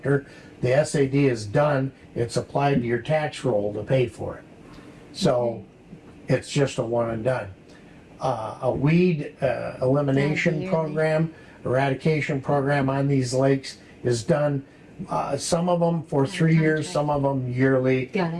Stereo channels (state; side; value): identical; both; correlation 1.00